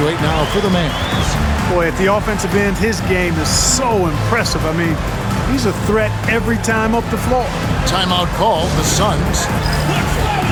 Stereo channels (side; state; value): both; identical; correlation 1.00